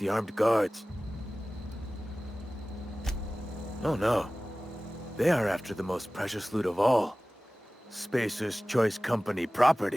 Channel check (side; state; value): both; normal; correlation 0.97